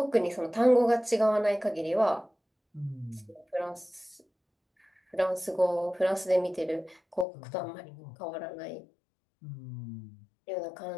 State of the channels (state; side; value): drops out; right; at 7.2 s